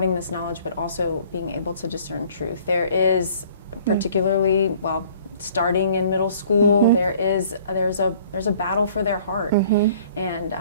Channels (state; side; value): inverted; both; correlation -0.54